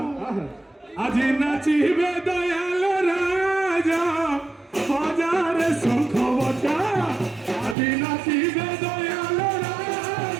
আজি নাচিবে দয়াল রাজা বাজারে শঙ্খ বাজা আজি নাচিবে দয়াল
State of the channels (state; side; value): drops out; left; at 7.8 s